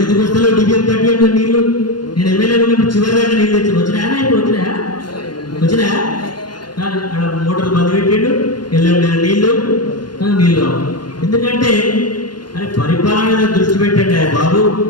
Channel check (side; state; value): right; late; 0.71 ms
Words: ఎందుకు వస్తాలో డిబిఎం కట్టి నీళ్ళు నేను ఎమ్మెల్యే ఉన్నప్పుడు చివరి దాకా నీళ్ళు తెచ్చి వచ్చినాయా? ఇప్పుడు వచ్చినా కానీ అక్కడ మోటార్ బంద్ పెట్టిండు, ఎల్లం నీళ్ళు రావు. ఎందుకంటే అరే పరిపాలన మీద దృష్టి పెట్టండి బాబు.